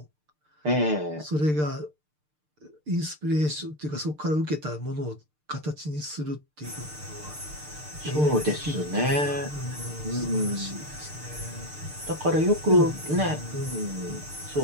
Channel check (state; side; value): late; left; 6.7 ms